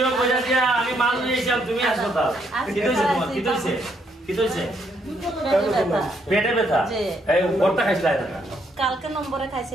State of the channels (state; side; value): normal; both; correlation 0.73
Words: কইরা দিয়া আমি মাল নিয়েছিলাম তুমি হাসপাতাল কি হইছে তোমার কি হইছে পেটে ব্যথা এই ওরটা খাইছিলা না কালকে নম্বরে